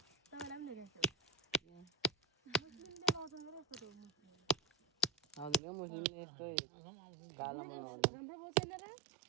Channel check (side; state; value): left; drops out; at 5.6 s